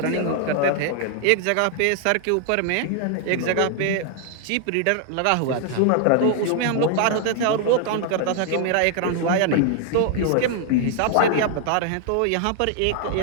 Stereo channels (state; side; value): different; both; correlation 0.00